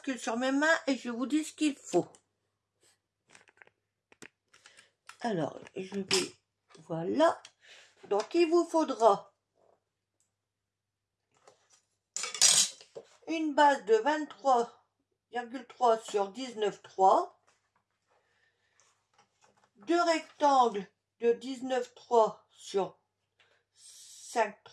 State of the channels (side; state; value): both; identical; correlation 1.00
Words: sur mes mains et je vous dis ce qu'il faut. Alors, je vais... Voilà. Donc, il vous faudra une base de 23,3 sur 19,3, deux rectangles de 19,3 sur